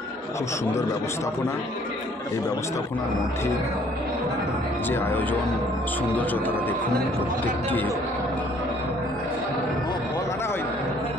খুব সুন্দর ব্যবস্থাপনা। এই ব্যবস্থাপনার মধ্যে যে আয়োজন সৌন্দর্য তারা দেখুন।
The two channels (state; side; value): normal; both; correlation 0.60